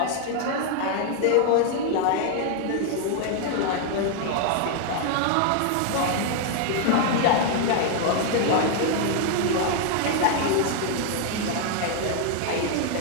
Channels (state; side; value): different; both; correlation 0.00